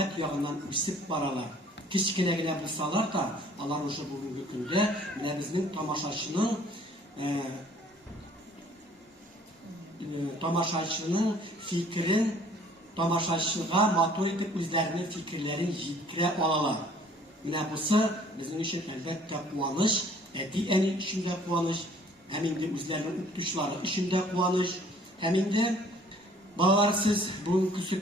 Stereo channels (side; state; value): both; normal; correlation 0.56